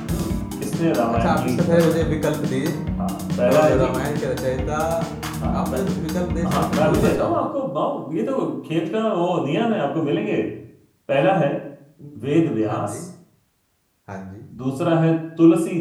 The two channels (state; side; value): identical; both; correlation 1.00